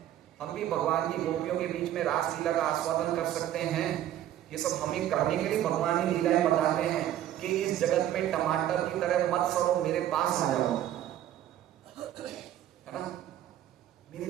हम भी भगवान की गोपियों के बीच में रास लीला का आस्वादन कर सकते हैं। ये सब हमें करने के लिए भगवान ही लीलाएं बताते हैं कि इस जगत में टमाटर की तरह मत सड़ो, मेरे पास आ जाओ, है ना, मेरे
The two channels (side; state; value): left; quieter; 12.0 dB